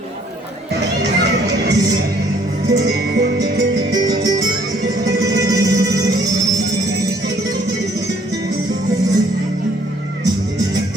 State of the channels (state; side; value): normal; both; correlation 0.63